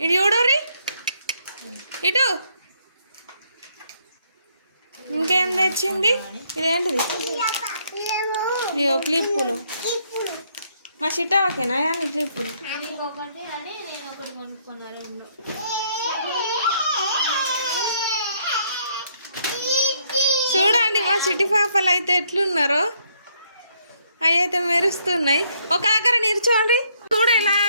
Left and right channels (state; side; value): inverted; both; correlation -0.70